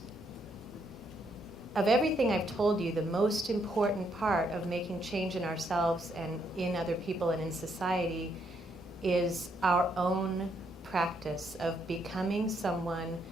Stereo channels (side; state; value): both; normal; correlation 0.74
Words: of everything I've told you, the most important part of making change in ourselves and in other people and in society is our own practice of becoming someone